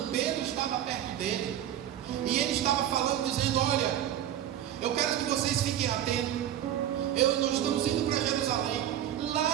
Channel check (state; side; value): quieter; left; 11.2 dB